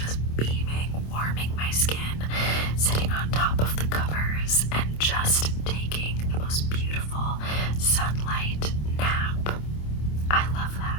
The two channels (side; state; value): right; late; 27 ms